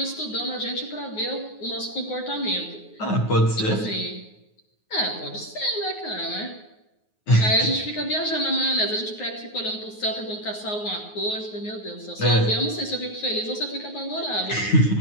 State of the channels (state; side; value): late; right; 9.5 ms